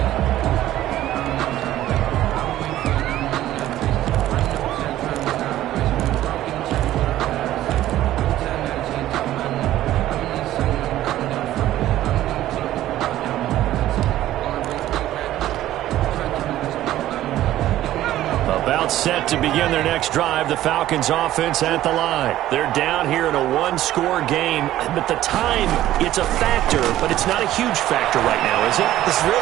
Set to begin their next drive. The Falcons offense at the line. They're down here in a 1-score game, but the time, it's a factor, but it's not a huge factor right now, is it? It's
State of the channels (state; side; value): quieter; left; 13.8 dB